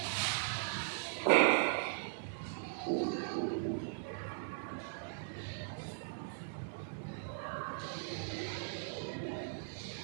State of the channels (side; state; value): left; silent; 52 dB below the other